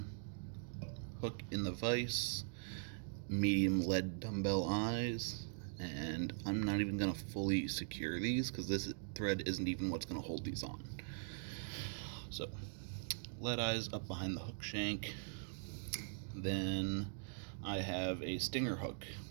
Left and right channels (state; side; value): silent; left; digital silence